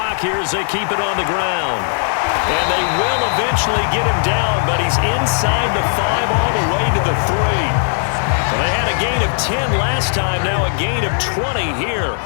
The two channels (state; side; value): silent; right; digital silence